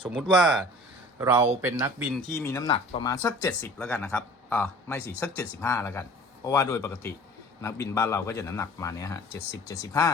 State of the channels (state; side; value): normal; both; correlation 0.45